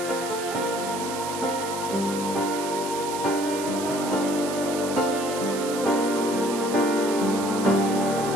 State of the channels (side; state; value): right; noise; hiss, 9 dB below the sound